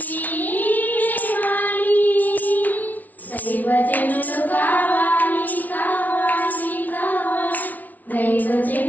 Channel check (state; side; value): late; right; 0.077 ms